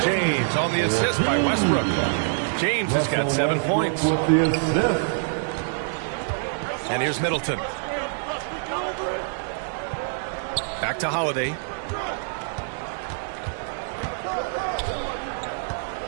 James on the assist by Westbrook. James has got 7 points. With the assist. And here's Middleton. Back to Holiday.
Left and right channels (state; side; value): silent; left; 62 dB below the other